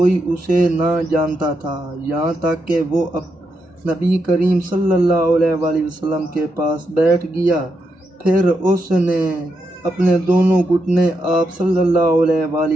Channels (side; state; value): both; normal; correlation 0.83